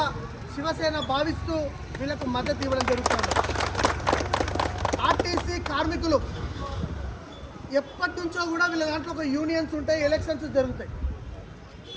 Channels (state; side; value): identical; both; correlation 1.00